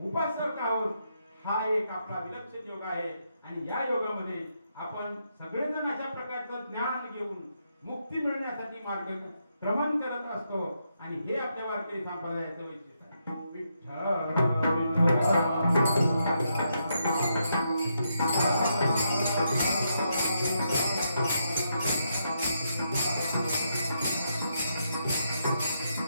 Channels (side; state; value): both; inverted; correlation -0.80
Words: उपासक आहोत. हा एक आपला विलक्षण योग आहे आणि या योगामध्ये आपण सगळेजण अशा प्रकारचं ज्ञान घेऊन मुक्ती मिळण्यासाठी मार्गक्रमण करत असतो. आणि हे आपल्या वारकरी संप्रदायाचं वैशिष्ट्य आहे. विठ्ठल